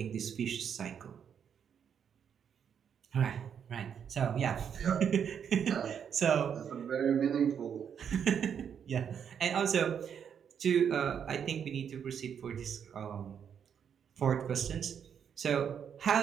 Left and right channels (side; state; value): left; quieter; 7.9 dB